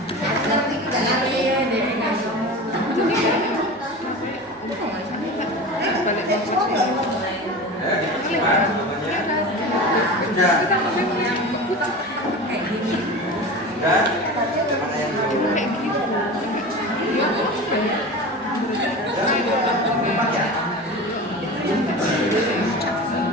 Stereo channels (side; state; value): both; normal; correlation 0.31